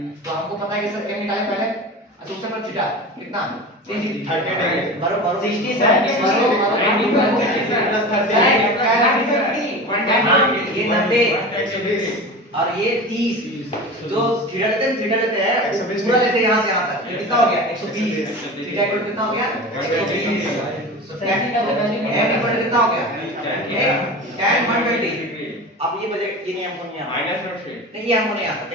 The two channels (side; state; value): both; normal; correlation 0.31